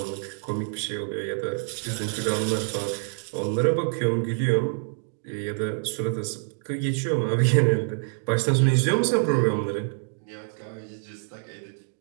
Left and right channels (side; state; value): left; silent; digital silence